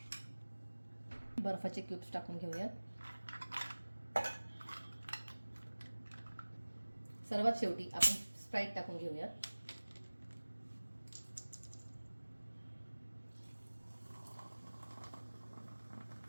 बर्फाचे क्यूब्स टाकून घेऊयात. सर्वात शेवटी आपण स्प्राईट टाकून घेऊयात.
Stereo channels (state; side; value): inverted; both; correlation -1.00